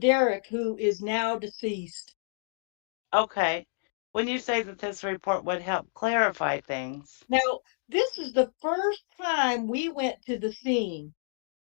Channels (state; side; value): silent; right; digital silence